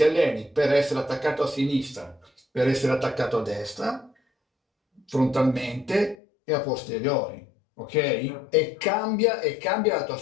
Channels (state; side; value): drops out; right; at 6.2 s